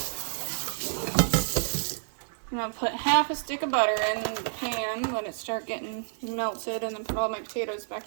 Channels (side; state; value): left; silent; 58 dB below the other